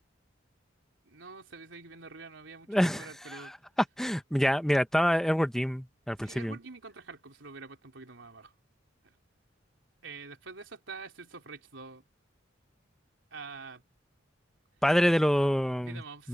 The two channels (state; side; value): normal; both; correlation 0.97